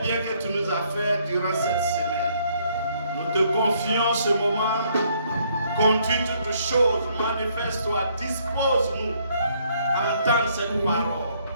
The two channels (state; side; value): inverted; both; correlation -0.67